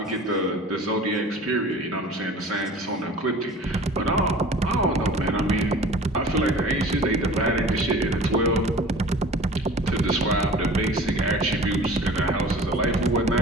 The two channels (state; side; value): normal; both; correlation 0.43